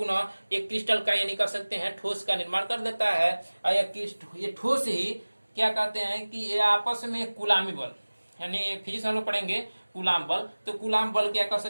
एक क्रिस्टल का यानी कह सकते हैं ठोस का निर्माण कर देता है। ये ठोस ही क्या कहते हैं कि ये आपस में कुलामी बल, यानी फिजिक्स हम लोग पढ़ेंगे कूलाम बल। तो कूलाम बल क्या कर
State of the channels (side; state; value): both; inverted; correlation -1.00